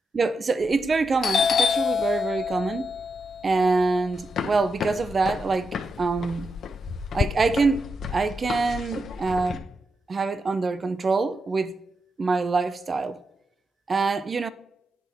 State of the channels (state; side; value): normal; both; correlation 0.86